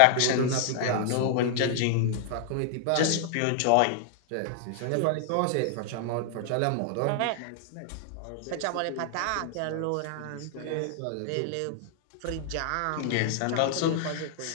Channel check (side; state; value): both; different; correlation 0.00